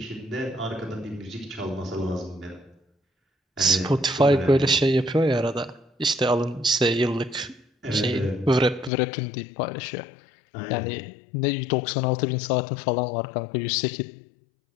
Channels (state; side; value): drops out; right; at 8.9 s